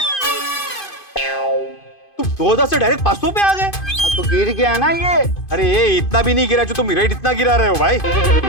तुम 2000 से डायरेक्ट 500 पे आ गए? तो गिर गया ना ये। अरे ये इतना भी नहीं गिरा जो तुम रेट इतना गिरा रहे हो भाई।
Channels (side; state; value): right; late; 2.5 ms